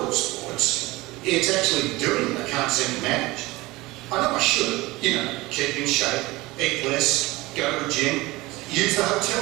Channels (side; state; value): left; quieter; 20.7 dB